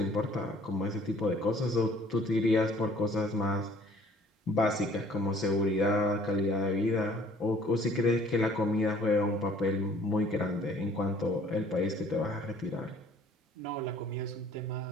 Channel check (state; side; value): normal; both; correlation 0.55